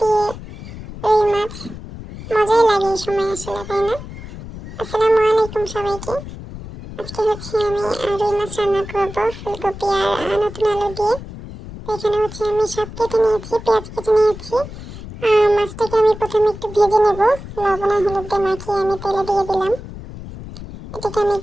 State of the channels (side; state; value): left; noise; rumble, 12 dB below the sound